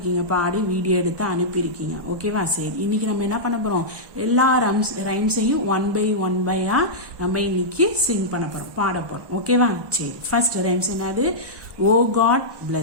பாடி வீடியோ எடுத்து அனுப்பியிருக்கீங்க. ஓகேவா? சரி, இன்னைக்கு நம்ம என்ன பண்ண போகிறோம், எல்லா ரைம்ஸையும் ஒன் பை நம்ம இன்னைக்கு சிங் பண்ண போகிறோம், பாட போகிறோம். ஓகேவா? சரி, ஃபர்ஸ்ட் ரைம்ஸ் என்னது? Oh God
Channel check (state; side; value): late; left; 1.2 ms